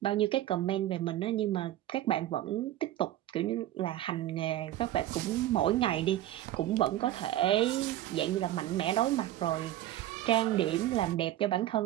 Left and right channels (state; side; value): quieter; left; 13.7 dB